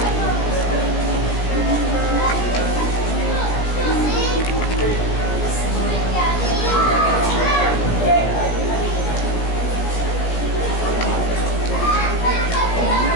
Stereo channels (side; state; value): right; late; 17 ms